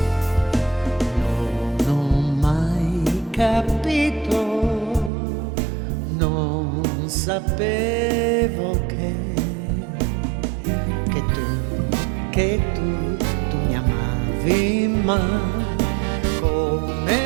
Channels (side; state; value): left; drops out; at 5.1 s